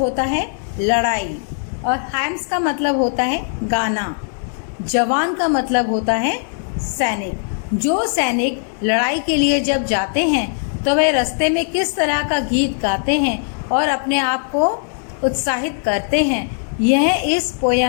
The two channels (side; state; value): right; silent; digital silence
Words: है लड़ाई और hymns का मतलब होता है गाना. जवान का मतलब होता है सैनिक. जो सैनिक लड़ाई के लिए जब जाते हैं तो वे रास्ते में किस तरह का गीत गाते हैं और अपने आप को उत्साहित करते हैं, यह इस